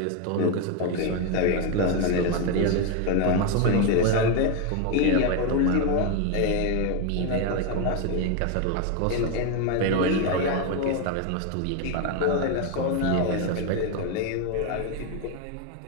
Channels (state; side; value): different; both; correlation 0.02